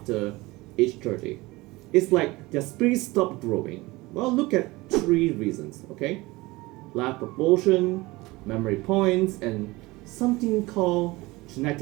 age 30. It's like their spirit stopped growing. Well, look at three reasons, okay? Life proportion, memory points, and something called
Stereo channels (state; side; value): quieter; left; 21.4 dB